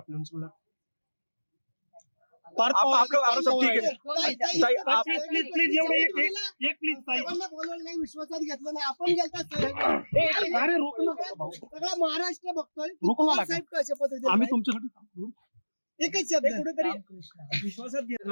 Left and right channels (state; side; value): inverted; both; correlation -1.00